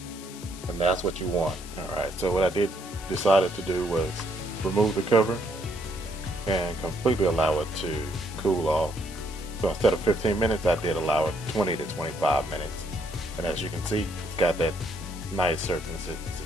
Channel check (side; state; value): left; noise; hiss, 15 dB below the sound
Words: And that's what you want. All right, so what I decided to do was remove the cover and completely allow it to cool off. So instead of 15 minutes, I did allow it 20 to 25 minutes. And as you can see, it's got that nice consistency.